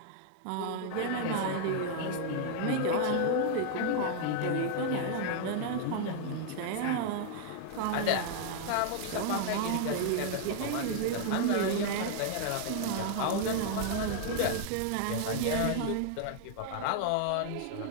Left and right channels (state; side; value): different; both; correlation 0.00